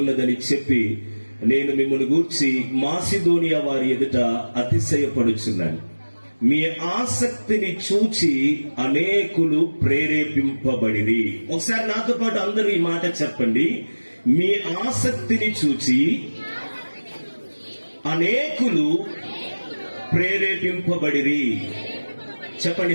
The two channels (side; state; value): both; inverted; correlation -1.00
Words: ఉన్నదని చెప్పి నేను మిమ్మల్ని గూర్చి మాసిదోనియా వారి ఎదుట అతిశయపడుచున్నాను. మీ ఆసక్తిని చూచి అనేకులు ప్రేరేపింపబడిరి. ఒకసారి నాతో పాటు అందరూ ఈ మాట చెప్పండి. మీ ఆసక్తిని చూచి అనేకులు ప్రేరేపింపబడిరి. చెప్పండి,